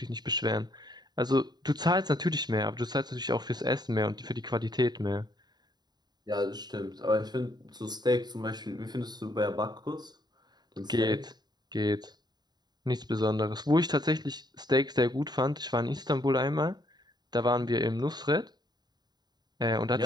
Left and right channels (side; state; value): left; late; 0.20 ms